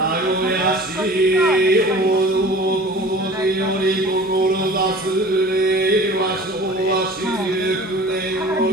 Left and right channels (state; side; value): normal; both; correlation 0.42